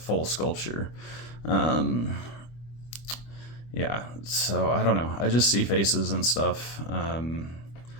sculpture. Yeah, so I don't know. I just see faces and stuff.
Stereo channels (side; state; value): right; late; 25 ms